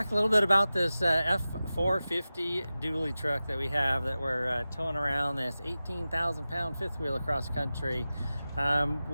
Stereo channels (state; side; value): inverted; both; correlation -0.95